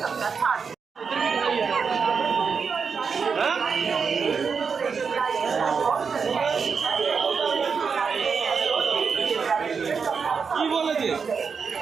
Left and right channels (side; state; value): left; quieter; 5.7 dB